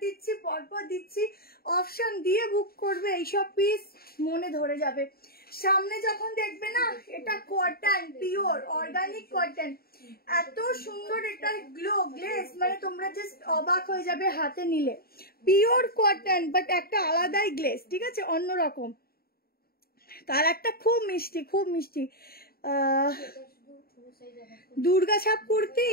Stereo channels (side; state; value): right; late; 0.44 ms